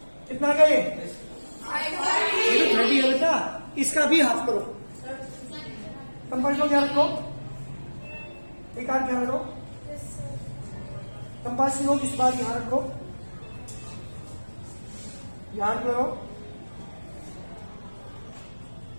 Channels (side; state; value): both; inverted; correlation -1.00